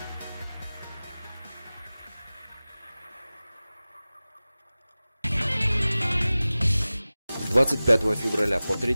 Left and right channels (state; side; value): inverted; both; correlation -0.98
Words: С 25 февраля по